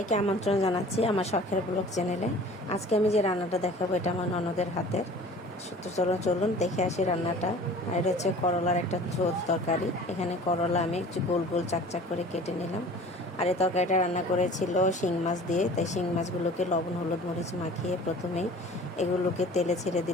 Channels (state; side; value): normal; both; correlation 0.45